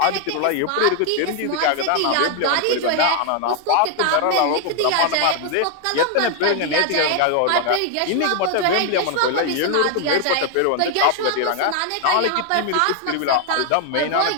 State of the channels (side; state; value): both; different; correlation 0.00